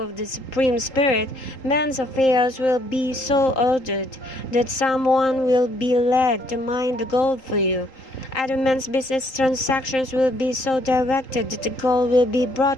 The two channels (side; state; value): right; late; 3.8 ms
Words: of the Supreme Spirit, man's affairs will be so ordered that someone will be led to mine the gold for you. Other men's business transactions will be so directed that the gold will be